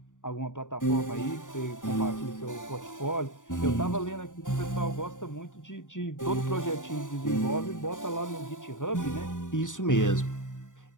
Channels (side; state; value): right; late; 0.87 ms